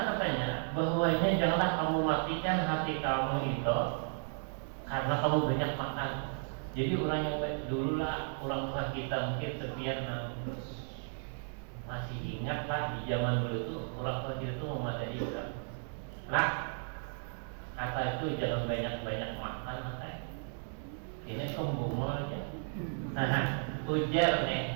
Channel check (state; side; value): silent; left; 55 dB below the other